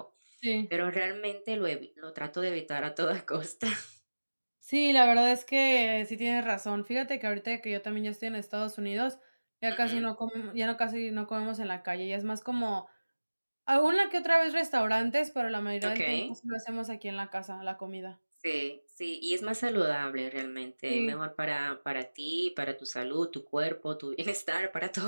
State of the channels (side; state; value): both; inverted; correlation -1.00